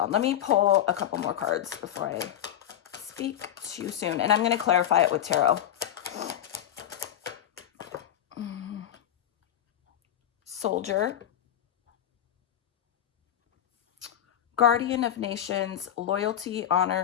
Let me pull a couple more cards before I speak too soon. And I'm going to clarify it with tarot. Soldier. Guardian of nations, loyalty,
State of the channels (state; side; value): quieter; right; 10.8 dB